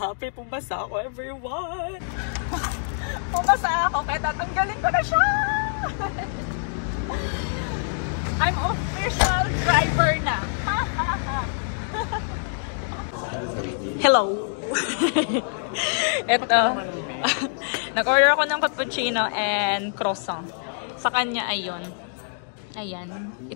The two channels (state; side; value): silent; right; digital silence